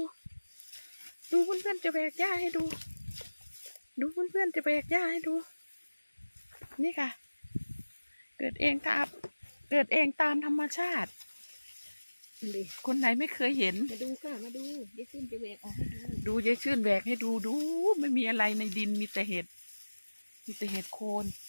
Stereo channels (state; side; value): inverted; both; correlation -1.00